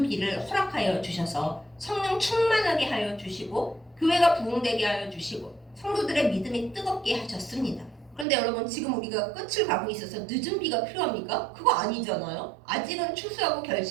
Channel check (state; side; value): drops out; left; at 8.2 s